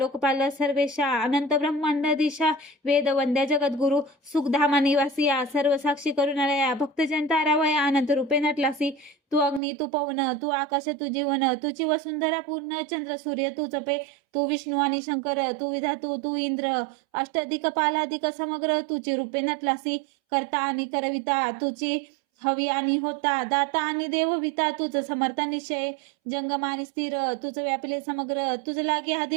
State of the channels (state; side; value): drops out; left; at 9.6 s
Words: सर्वेशा, अनंत ब्रह्मांड दिशा वेद वंद्या जगद्गुरु. सुखधामा निवासिया सर्व साक्षी करुणालया, भक्तजन तारावया अनंत रूपे नटलासी. तू अग्नी तू पवन तू आकाश तू जीवन, तुझी वसुंधरा पूर्ण चंद्र सूर्य तू जपे. तू विष्णू आणि शंकर तू विधातू तू इंद्र, अष्टाधिक पालाधिक समग्र तुझी रूपे नटलासी. करता आणि करविता तुझी हवी आणि होता, दाता आणि देवविता तुझ समर्थ निश्चय. जंगम आणि स्थिर तुझ व्यापिले समग्र, तुझ लागे